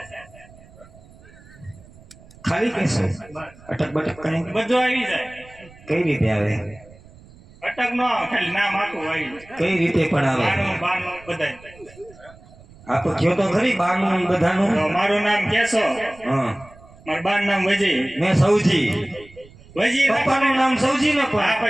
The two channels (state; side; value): noise; right; rumble, 23 dB below the sound